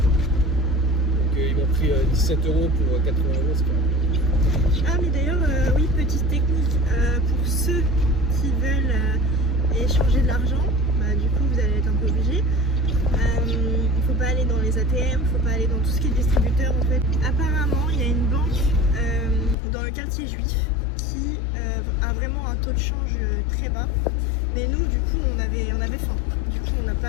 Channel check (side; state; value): right; drops out; at 19.6 s